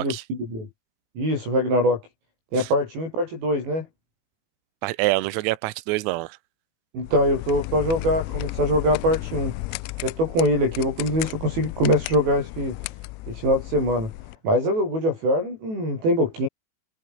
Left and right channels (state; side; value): late; left; 18 ms